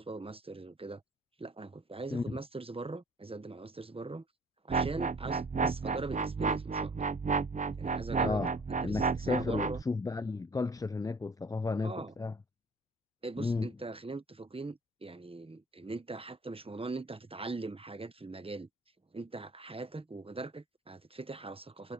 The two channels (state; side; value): normal; both; correlation 0.50